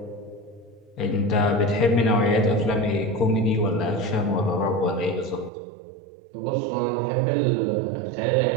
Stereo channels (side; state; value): left; drops out; at 5.5 s